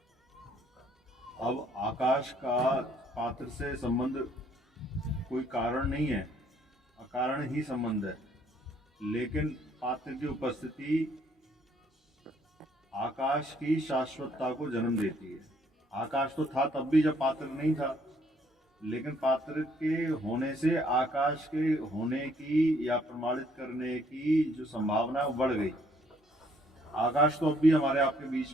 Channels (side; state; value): both; normal; correlation 0.65